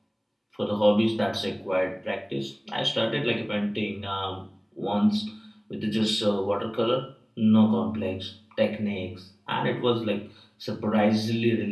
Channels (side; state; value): both; identical; correlation 1.00